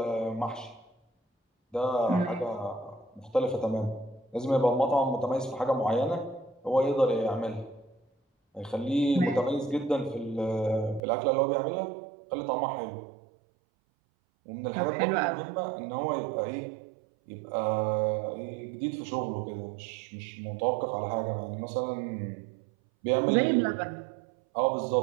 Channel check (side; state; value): left; drops out; at 11.0 s